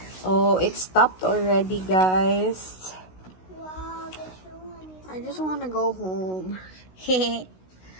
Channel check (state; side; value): late; right; 16 ms